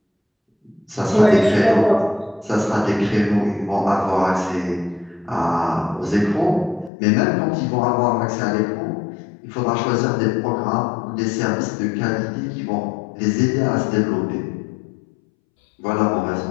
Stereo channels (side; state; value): right; drops out; at 6.9 s